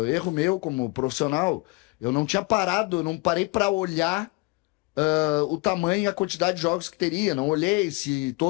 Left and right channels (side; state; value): right; quieter; 25.6 dB